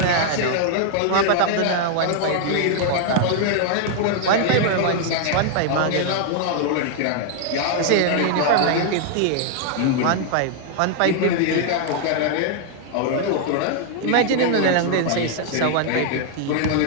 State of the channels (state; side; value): different; both; correlation 0.00